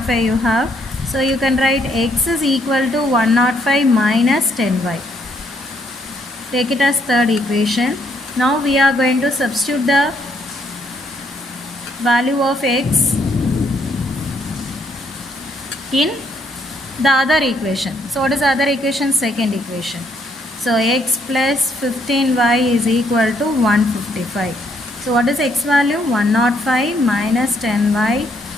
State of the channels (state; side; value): normal; both; correlation 0.70